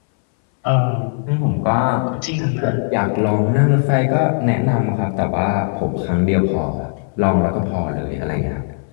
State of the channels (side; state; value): right; silent; 63 dB below the other